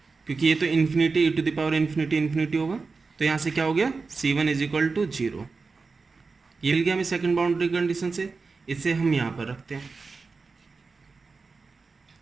क्योंकि ये तो infinity e to the power infinity infinity होगा, तो यहाँ से क्या हो गया, C1 इज इक्वल टू 0, ये मिल गया हमें सेकंड बाउंड्री कंडीशन से। इसे हम यहाँ पर रखते हैं,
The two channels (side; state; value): left; quieter; 4.4 dB